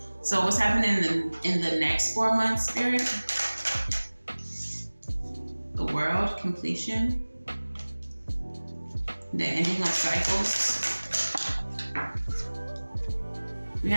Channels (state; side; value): inverted; both; correlation -1.00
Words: So what's happening in the next 4 months, spirit? The World, completion, the ending of cycles. We